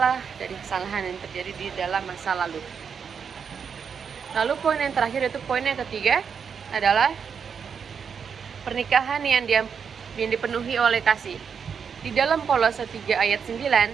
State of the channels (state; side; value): quieter; left; 6.7 dB